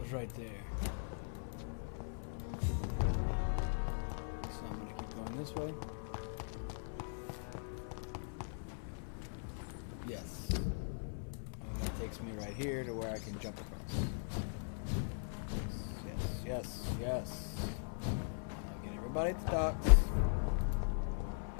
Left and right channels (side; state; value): right; silent; 51 dB below the other